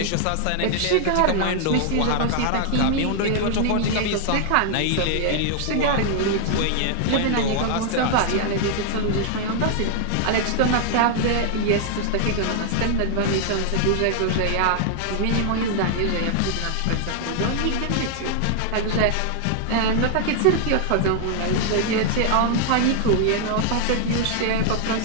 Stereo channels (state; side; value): different; both; correlation 0.00